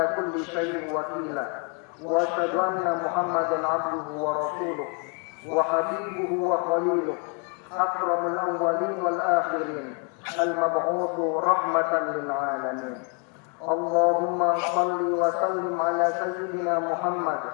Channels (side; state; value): right; quieter; 37.4 dB